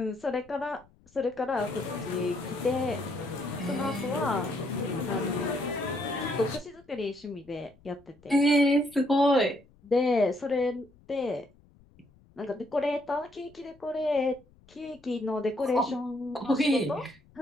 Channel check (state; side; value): noise; left; rumble, 28 dB below the sound